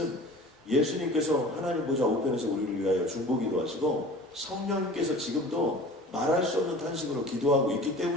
예수님께서 하나님 보좌 우편에서 우리를 위하여 중보기도 하시고 성령님께서 지금도 말할 수 없는 탄식으로 기도하고 있기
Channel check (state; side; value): normal; both; correlation 0.42